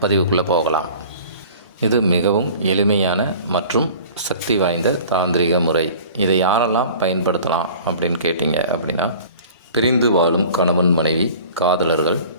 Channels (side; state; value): both; inverted; correlation -0.45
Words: பதிவுக்குள்ளே போகலாம். இது மிகவும் எளிமையான மற்றும் சக்தி வாய்ந்த தாந்திரிக முறை. இதை யாரெல்லாம் பயன்படுத்தலாம் அப்படின்னு கேட்டிங்க அப்படின்னா, பிரிந்து வாழும் கணவன் மனைவி, காதலர்கள்,